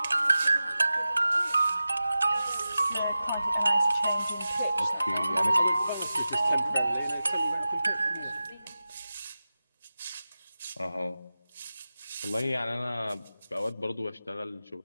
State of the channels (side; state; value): both; inverted; correlation -0.95